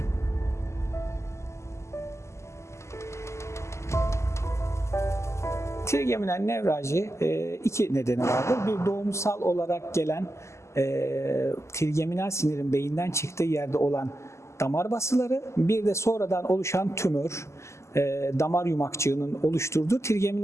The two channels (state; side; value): late; right; 0.13 ms